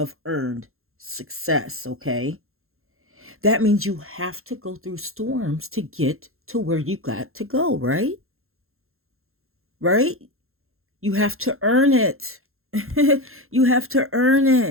earned success, okay? That means you have to go through storms to get to where you got to go, right? Right? You have to earn it. You have to earn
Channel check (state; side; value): late; left; 0.62 ms